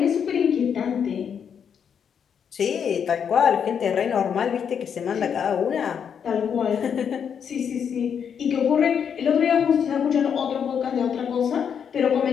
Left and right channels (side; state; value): right; quieter; 7.6 dB